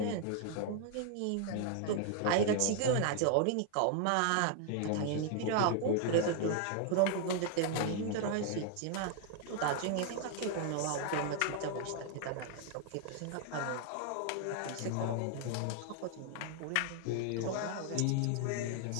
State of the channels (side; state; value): both; different; correlation 0.00